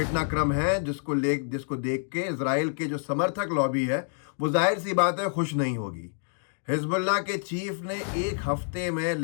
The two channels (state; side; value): silent; right; digital silence